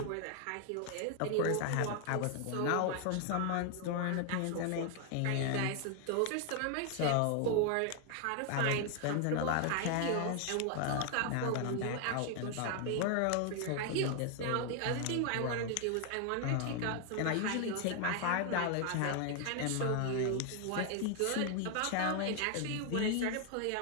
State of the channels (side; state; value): both; different; correlation 0.00